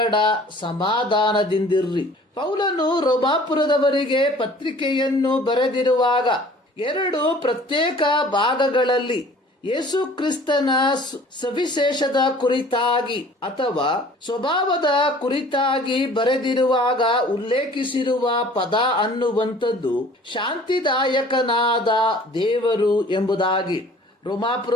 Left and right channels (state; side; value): normal; both; correlation 0.50